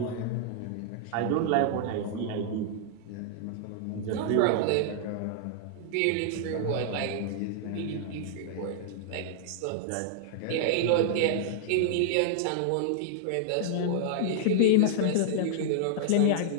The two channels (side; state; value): both; different; correlation -0.01